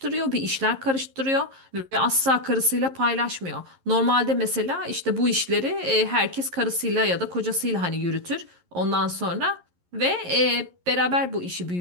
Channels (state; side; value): late; left; 11 ms